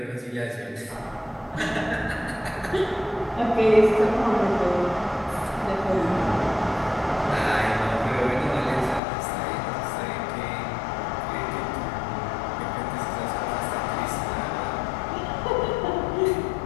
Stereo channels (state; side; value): drops out; right; at 9.0 s